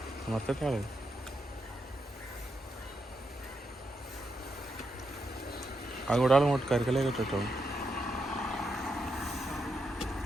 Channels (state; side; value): normal; both; correlation 0.83